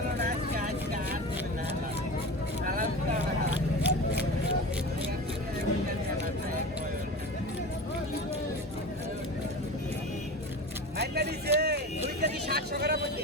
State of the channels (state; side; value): normal; both; correlation 0.30